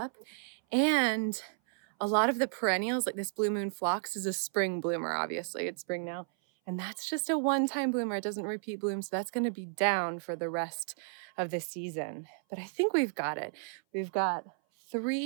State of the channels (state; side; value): silent; left; 56 dB below the other